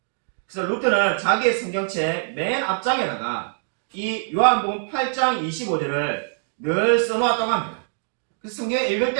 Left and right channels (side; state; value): left; silent; digital silence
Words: 그래서 루터는 자기의 성경책 맨 앞장에다가 이 요한복음 8장 25절을 늘 써놓았다고 합니다. 그래서 성경을 읽을